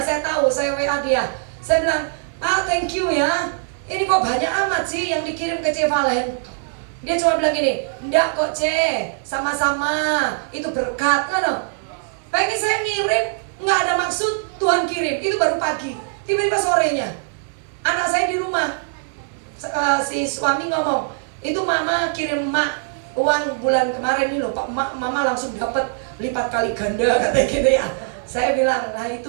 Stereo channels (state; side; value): silent; left; 57 dB below the other